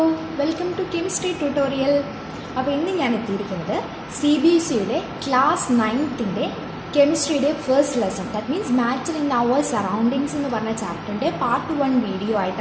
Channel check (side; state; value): both; identical; correlation 1.00